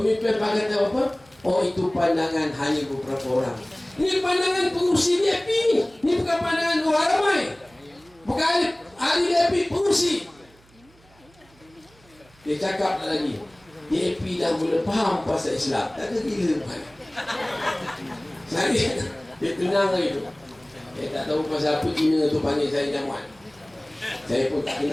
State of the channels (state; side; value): noise; right; hum, 29 dB below the sound